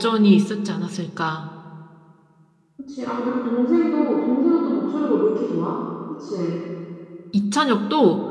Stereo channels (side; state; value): both; identical; correlation 1.00